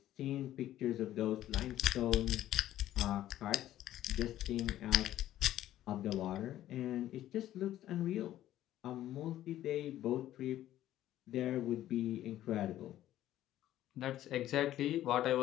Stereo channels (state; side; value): quieter; right; 13.2 dB